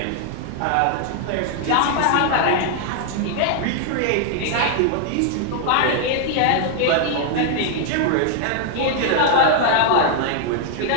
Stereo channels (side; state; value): both; different; correlation 0.00